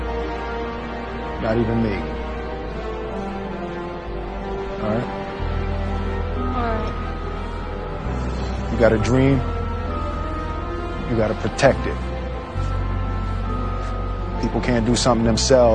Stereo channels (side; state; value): both; identical; correlation 1.00